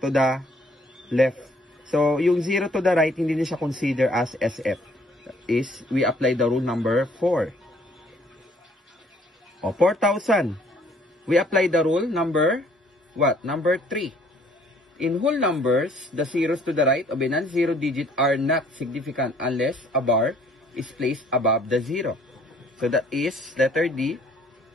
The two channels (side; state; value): both; normal; correlation 0.61